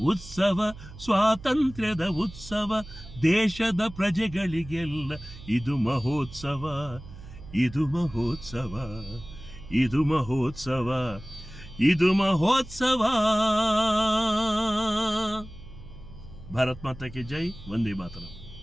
ಉತ್ಸವ, ಸ್ವಾತಂತ್ರ್ಯದ ಉತ್ಸವ, ದೇಶದ ಪ್ರಜೆಗಳಿಗೆಲ್ಲ ಇದು ಮಹೋತ್ಸವ, ಇದು ಮಹೋತ್ಸವ, ಇದು ಮಹೋತ್ಸವ, ಇದು ಮಹೋತ್ಸವ. ಭಾರತ್ ಮಾತಾ ಕಿ ಜೈ, ವಂದೇ ಮಾತರಂ.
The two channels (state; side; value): noise; right; hum, 16 dB below the sound